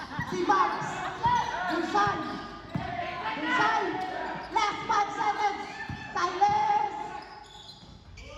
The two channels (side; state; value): both; identical; correlation 1.00